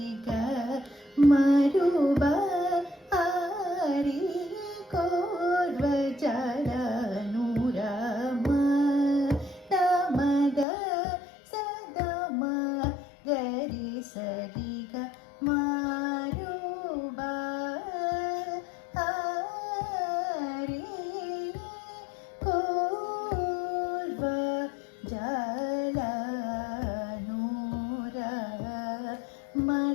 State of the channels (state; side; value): drops out; right; at 10.7 s